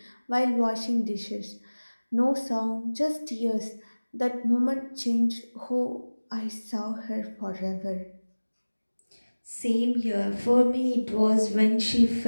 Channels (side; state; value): both; inverted; correlation -1.00